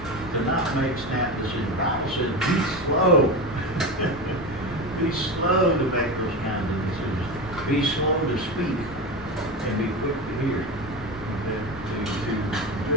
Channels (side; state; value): both; normal; correlation 0.22